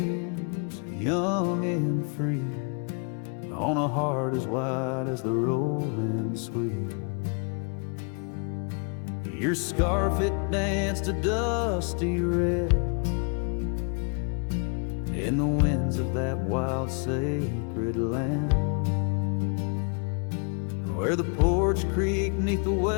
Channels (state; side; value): quieter; right; 38.8 dB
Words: young and free on a heart as wide as the rolling sweet. Your scarf, it danced a dusty red in the winds of that wild sacred land, where the porch creaked neath the